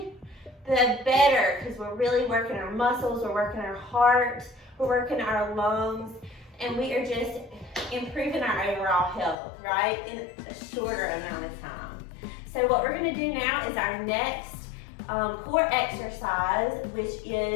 the better, because we're really working our muscles, we're working our heart, we're working our lungs, and we are just improving our overall health, right, in a shorter amount of time. So what we're going to do now is our next core exercise, which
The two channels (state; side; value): drops out; right; at 9.3 s